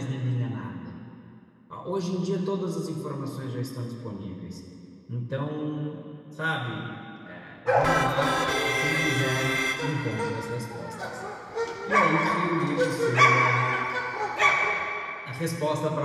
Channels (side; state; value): both; identical; correlation 1.00